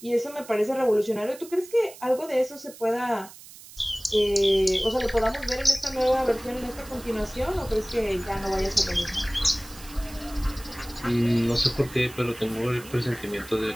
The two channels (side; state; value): right; noise; hiss, 18 dB below the sound